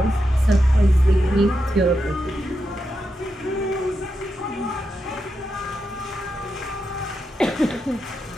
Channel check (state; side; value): normal; both; correlation 0.86